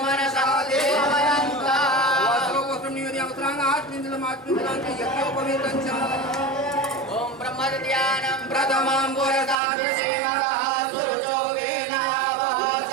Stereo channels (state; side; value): drops out; left; at 9.6 s